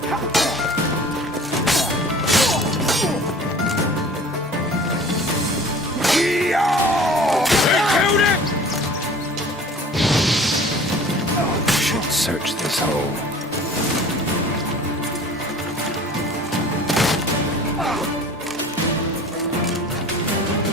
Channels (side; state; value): both; normal; correlation 0.45